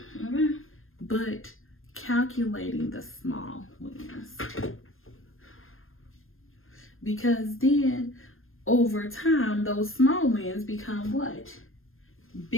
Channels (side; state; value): right; late; 0.60 ms